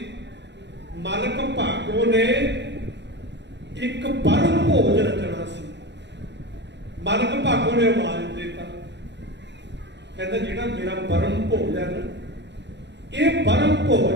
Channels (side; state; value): left; late; 0.51 ms